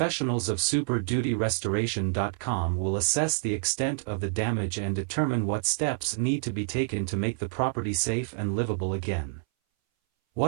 of superdutyrestoration.com will assess the extent of the damage and determine what steps need to be taken to make the property safe and livable again.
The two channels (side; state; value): left; silent; 59 dB below the other